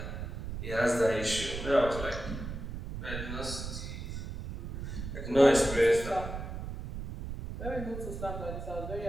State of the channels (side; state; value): right; noise; rumble, 7 dB below the sound